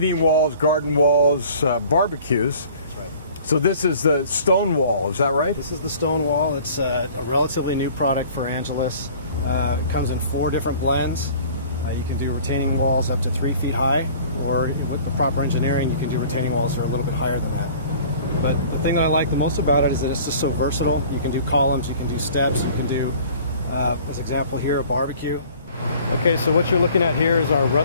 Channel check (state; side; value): inverted; both; correlation -0.49